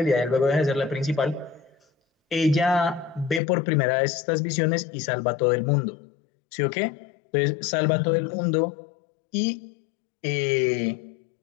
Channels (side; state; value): right; drops out; at 3.4 s